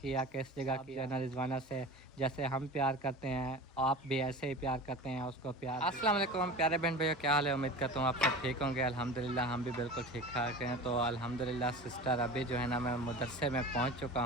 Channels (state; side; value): normal; both; correlation 0.34